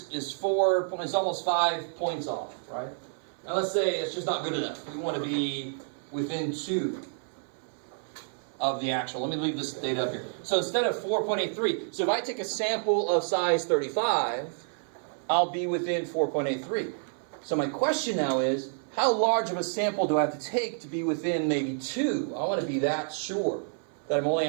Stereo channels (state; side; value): silent; left; 58 dB below the other